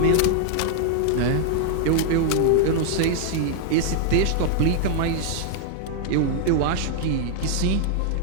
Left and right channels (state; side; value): different; both; correlation 0.00